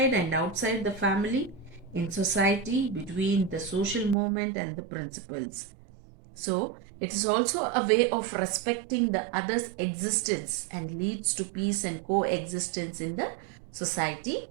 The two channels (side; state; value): left; drops out; at 4.2 s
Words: and outside the family, in society, between the social movement and the principles. So it is also a way of respecting the other's existence and leads to peace and coexistence in the society.